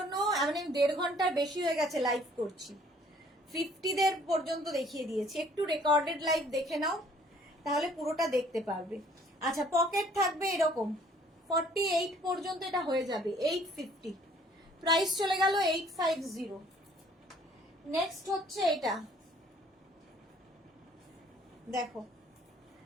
মানে 1.5 ঘন্টার বেশি হয়ে গেছে লাইভ করছি, 50 দের পর্যন্ত দেখিয়ে দিয়েছি। একটু রেকর্ডেড লাইভ দেখে নাও তাহলে পুরোটা দেখতে পারবে। আচ্ছা, পকেট থাকবে এরকম 48 পর্যন্ত, এটা হয়ে যাবে 850। প্রাইস চলে গেল 850। নেক্সট হচ্ছে এটা দেখো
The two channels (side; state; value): both; normal; correlation 0.58